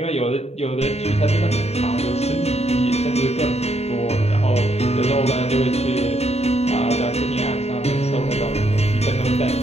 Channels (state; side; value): late; right; 0.30 ms